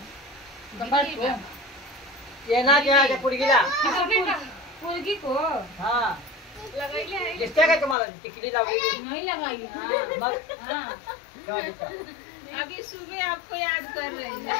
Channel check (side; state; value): right; drops out; at 8.0 s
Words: ये ना क्या पुडगीला पुडगी को हाँ लगाई है दिसते का तुम्हाला टिकली लावली नहीं लगाई मग हाँ अभी सुबह आपको याद कर रहे हैं